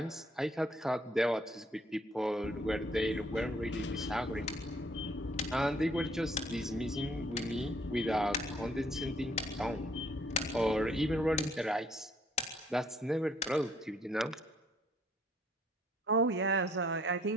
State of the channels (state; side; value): normal; both; correlation 0.64